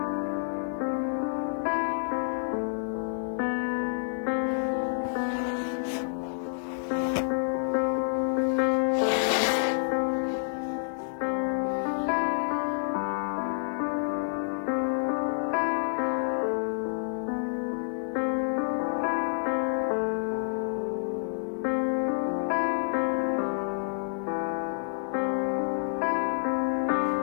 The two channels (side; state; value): right; silent; digital silence